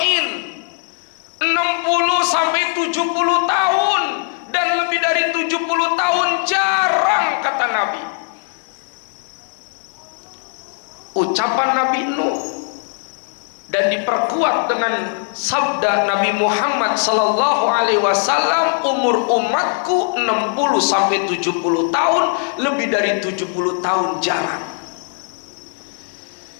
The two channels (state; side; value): silent; right; 57 dB below the other